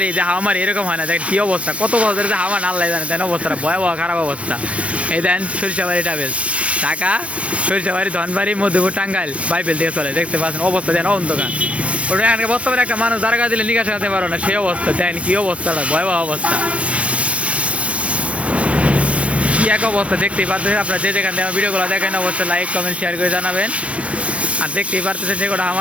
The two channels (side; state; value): left; late; 0.063 ms